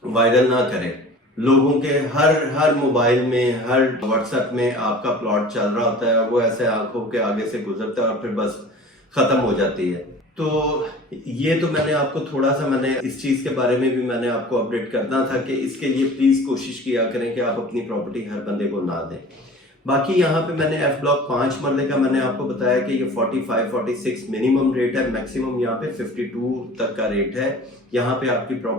वायरल ना करे। लोगों के हर मोबाइल में, हर व्हाट्सएप में आपका प्लॉट चल रहा होता है, वो ऐसे आंखों के आगे से गुजरता है और फिर बस खत्म हो जाती है। तो ये तो मैंने आपको थोड़ा सा मैंने इस चीज़ के बारे में भी मैंने आपको अपडेट करना था कि इसके लिए प्लीज़ कोशिश किया करें कि आप अपनी प्रॉपर्टी हर बंदे को ना दें। बाकी यहाँ पे मैंने F ब्लॉक 5 मरले का मैंने आपको बताया कि ये 45-46 मिनिमम रेट है, मैक्सिमम यहाँ पे 52 तक का रेट है। यहाँ पे आपकी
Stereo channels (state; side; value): normal; both; correlation 0.42